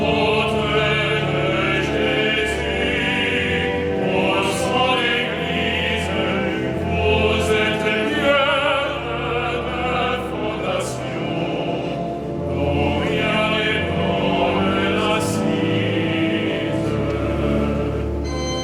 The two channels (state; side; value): identical; both; correlation 1.00